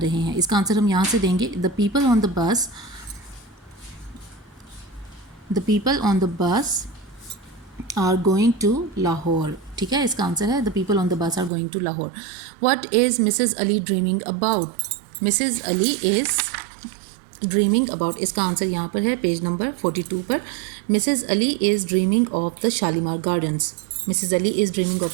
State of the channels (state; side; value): drops out; left; at 11.5 s